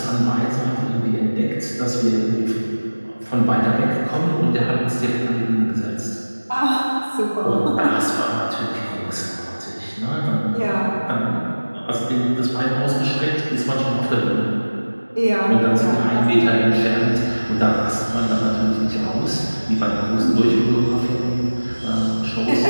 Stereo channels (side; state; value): both; inverted; correlation -1.00